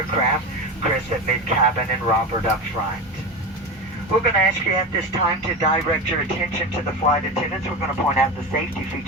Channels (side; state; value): both; normal; correlation 0.24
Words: Chris at mid-cabin, and Robert up front. We're going to ask you at this time to direct your attention to the flight attendants. We're going to point out the safety